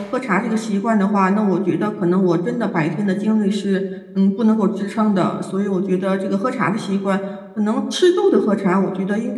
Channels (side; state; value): both; identical; correlation 1.00